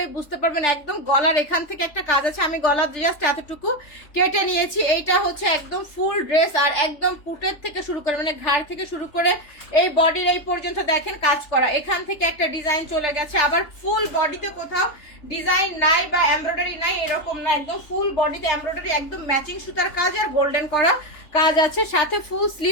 বুঝতে পারবেন। একদম গলার এখান থেকে একটা কাজ আছে, আমি গলার জাস্ট এতটুকু কেটে নিয়েছি। এইটা হচ্ছে একদম ফুল ড্রেস আর একদম পুটের থেকে শুরু করে মানে ঘাড় থেকে শুরু করে এই বডির এই পর্যন্ত দেখেন কাজ করা। এখান থেকে একটা ডিজাইন চলে গেছে, আবার ফুল বডিতে কোথাও ডিজাইন নাই বা এমব্রয়ডারি নাই এরকম না, একদম ফুল বডিতে এমব্রয়ডারি, একদম ম্যাচিং সুতার কাজ আর গোল্ডেন করা কাজ আছে, সাথে ফুল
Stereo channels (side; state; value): right; late; 3.4 ms